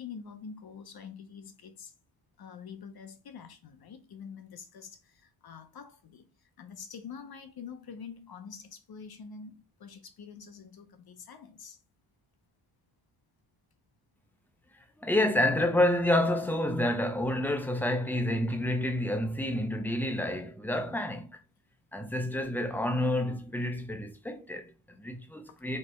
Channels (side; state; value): both; normal; correlation 0.71